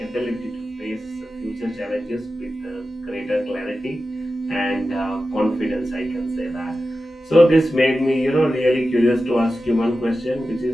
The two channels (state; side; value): normal; both; correlation 0.93